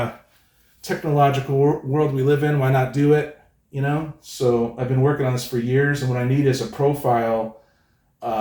technological world we live in, why not do it? You know, so I've been working on this for years, and what I need is a profile.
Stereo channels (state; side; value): identical; both; correlation 1.00